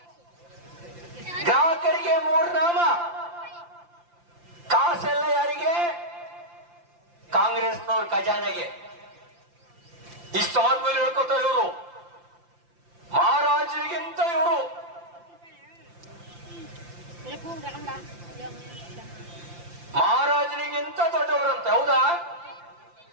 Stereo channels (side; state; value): left; late; 5.8 ms